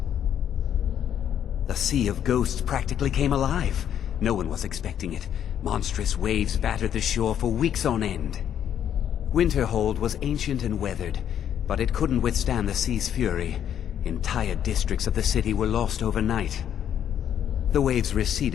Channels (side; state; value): right; quieter; 9.6 dB